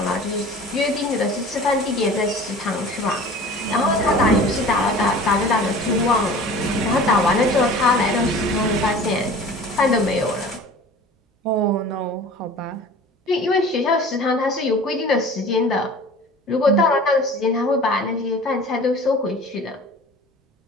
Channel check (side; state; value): both; normal; correlation 0.42